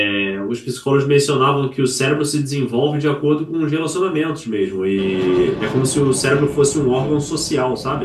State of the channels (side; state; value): both; identical; correlation 1.00